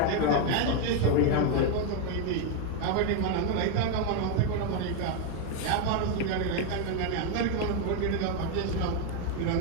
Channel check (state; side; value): different; both; correlation 0.01